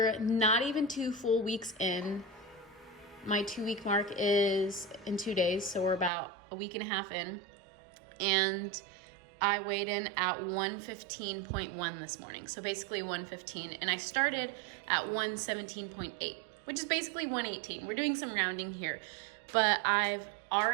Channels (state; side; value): drops out; left; at 6.1 s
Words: not even 2 full weeks in. My 2-week mark is in 2 days, so we're about a week and a half in. And I weighed in at 115.1 this morning, so basically 115. And I started at 117.8, which is basically 118. We're doing some rounding here, but I've